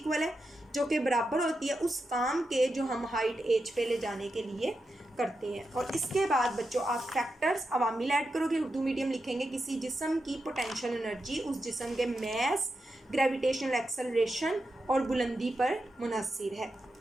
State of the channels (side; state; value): both; normal; correlation 0.88